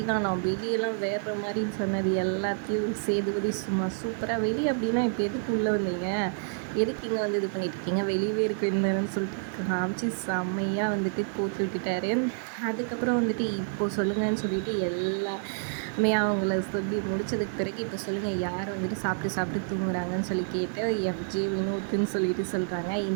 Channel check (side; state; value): left; silent; digital silence